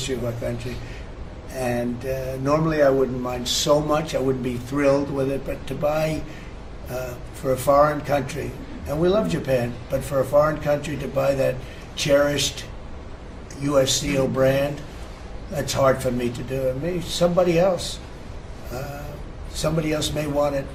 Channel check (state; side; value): identical; both; correlation 1.00